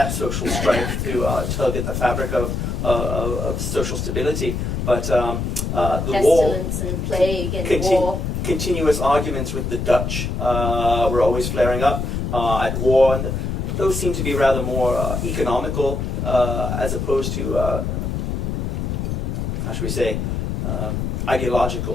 social strife to tug at the fabric of social stability. But the war, Pestilence and plague and war. continuous arguments with the Dutch were always flaring up at war, and those seem to be rather more economical as opposed to, how should we say,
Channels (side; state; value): left; noise; rumble, 2 dB below the sound